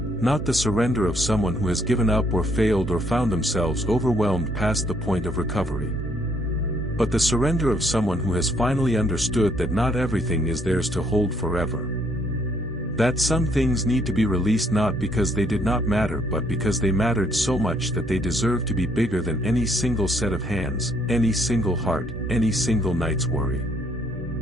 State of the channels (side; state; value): both; normal; correlation 0.67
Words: the surrender of someone who has given up or failed or found themselves overwhelmed past the point of recovery. But the surrender of someone who has finally understood that not everything is theirs to hold forever. That some things need to be released not because they did not matter but because they mattered so much that they deserve to be bigger than any single set of hands, any single heart, any single night's worry.